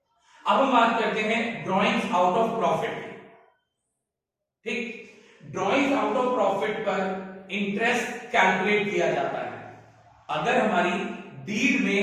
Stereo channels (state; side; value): identical; both; correlation 1.00